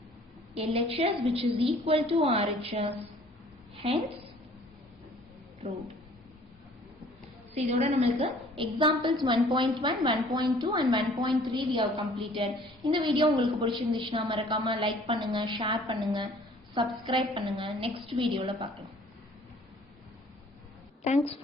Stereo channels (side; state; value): both; normal; correlation 0.54